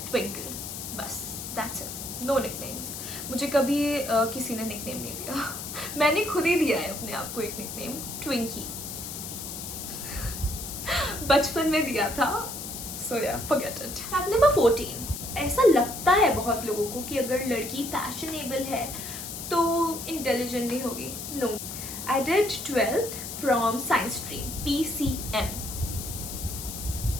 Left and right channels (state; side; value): noise; left; hiss, 8 dB below the sound